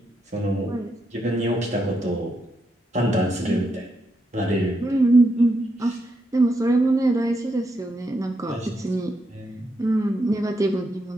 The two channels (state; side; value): normal; both; correlation 0.81